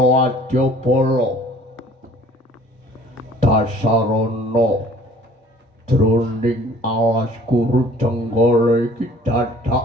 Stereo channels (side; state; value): both; normal; correlation 0.52